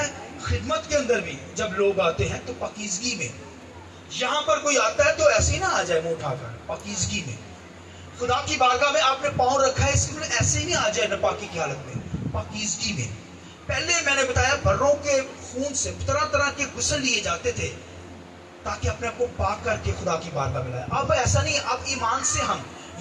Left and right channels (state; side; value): identical; both; correlation 1.00